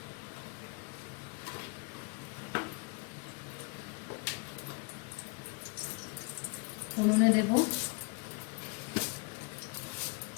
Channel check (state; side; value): quieter; right; 32.2 dB